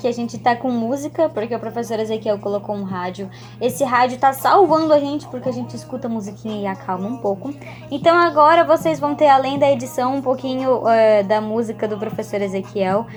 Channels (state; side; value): identical; both; correlation 1.00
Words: a gente tá com música, porque o professor Ezequiel colocou um rádio. Esse rádio tá salvando a gente, porque a gente escuta a musiquinha e acalma um pouco. Então agora vocês vão ter, além da edição, um pouquinho da música do professor Ezequiel.